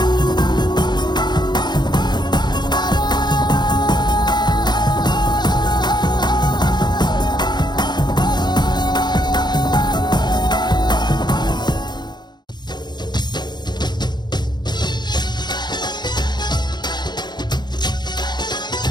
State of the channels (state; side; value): late; right; 0.21 ms